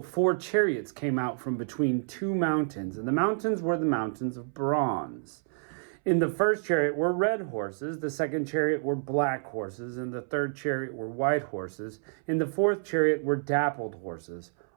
4 chariots came out from between 2 mountains, and the mountains were the mountains of bronze. In the first chariot were red horses, the second chariot were black horses, and the third chariot were white horses. In the fourth chariot were dappled horses,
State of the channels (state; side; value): silent; left; 59 dB below the other